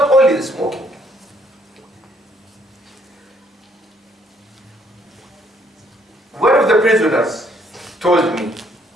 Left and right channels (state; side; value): normal; both; correlation 0.67